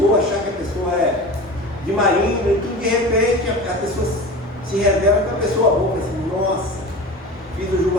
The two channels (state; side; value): normal; both; correlation 0.33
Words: achar que a pessoa é de marinho, e tudo de repente a pessoa se revela que é uma pessoa boa, assim, nossa, fiz o